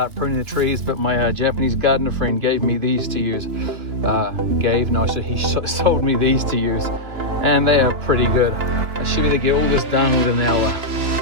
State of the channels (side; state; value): left; late; 2.7 ms